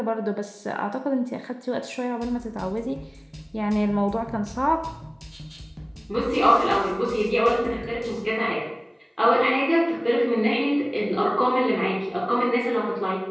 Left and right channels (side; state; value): both; identical; correlation 1.00